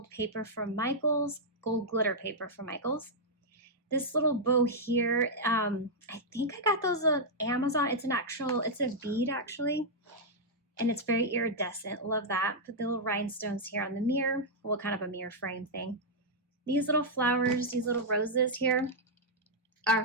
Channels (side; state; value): both; normal; correlation -0.06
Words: paper from Michaels, gold glitter paper from Michaels. This little bow here, I think I got those on Amazon. It's a bead actually, and it's very iridescent. Love that. Put the little rhinestones here on the mirror. Well, kind of a mirror frame thing. These little flowers, these little roses here are